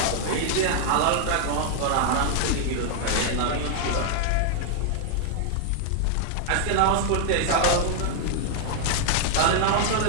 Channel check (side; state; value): both; different; correlation 0.00